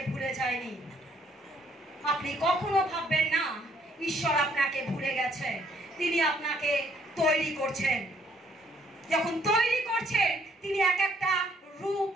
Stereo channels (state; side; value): normal; both; correlation 0.66